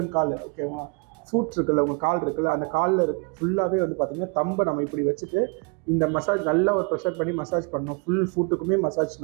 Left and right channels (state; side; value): quieter; left; 34.5 dB